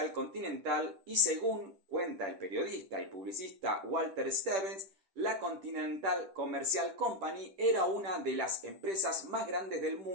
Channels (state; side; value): late; left; 10 ms